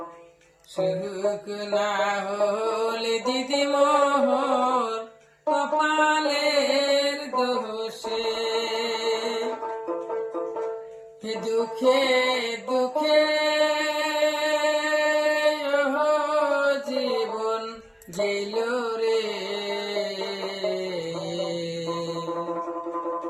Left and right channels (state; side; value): identical; both; correlation 1.00